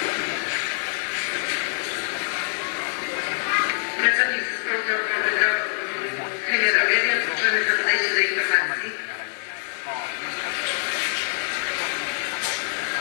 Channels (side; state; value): right; silent; digital silence